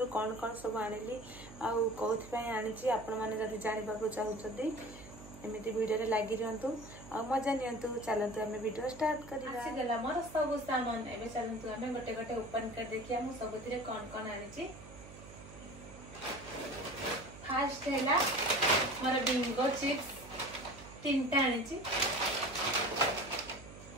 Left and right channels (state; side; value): noise; right; hum, 16 dB below the sound